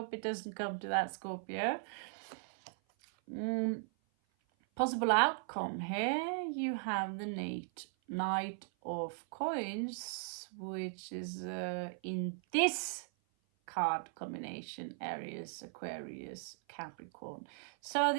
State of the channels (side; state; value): left; silent; 52 dB below the other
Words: it doesn't come to that, Scorpio. Possible outcome here, you have the Knight of Coins, which is in this card combination, Aries, Aquarius, Capricorn. So